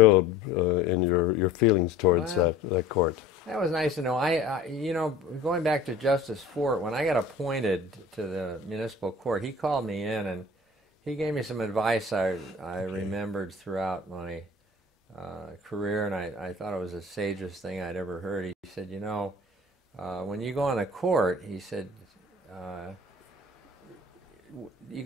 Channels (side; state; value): right; quieter; 3.1 dB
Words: in your feelings towards that court. That was nice to know. Going back to Justice Fort, when I got appointed to the municipal court, he called me in and he gave me some advice I remembered throughout my career, and I thought it was the sagest thing I'd ever heard. He said, when you go on a court, he said, you